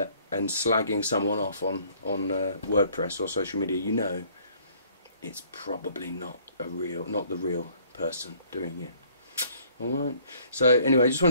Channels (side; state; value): both; inverted; correlation -0.59